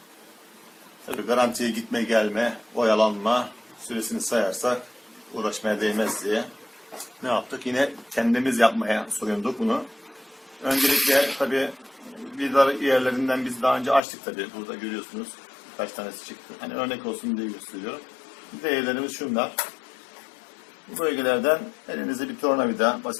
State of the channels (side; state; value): right; drops out; at 14.0 s